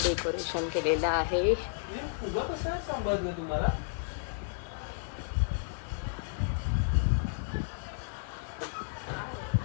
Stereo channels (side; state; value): right; silent; 56 dB below the other